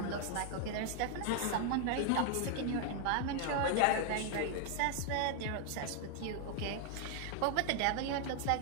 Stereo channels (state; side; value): different; both; correlation 0.00